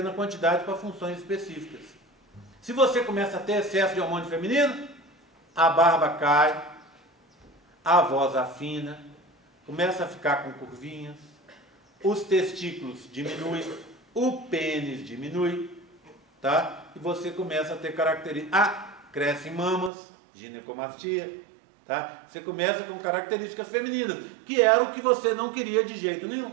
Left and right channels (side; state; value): left; drops out; at 19.9 s